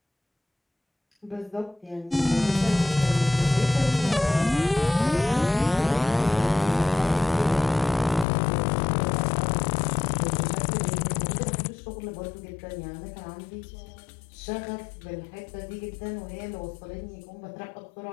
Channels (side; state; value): right; drops out; at 8.2 s